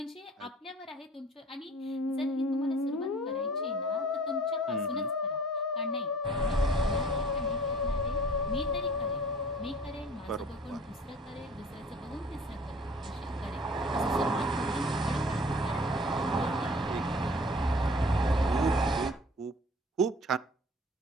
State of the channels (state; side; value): normal; both; correlation 0.49